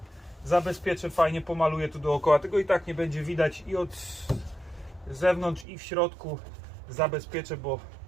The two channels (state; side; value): drops out; left; at 5.7 s